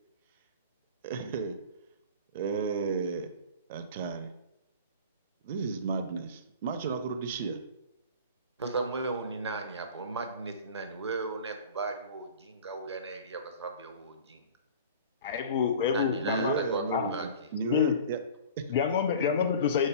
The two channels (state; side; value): inverted; both; correlation -0.39